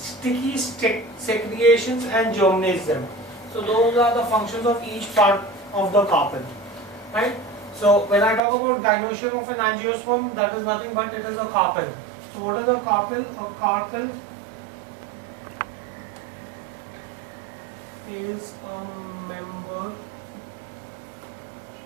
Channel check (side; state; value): left; drops out; at 8.4 s